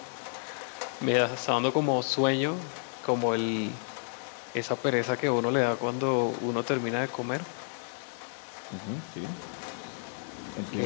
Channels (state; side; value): silent; right; 57 dB below the other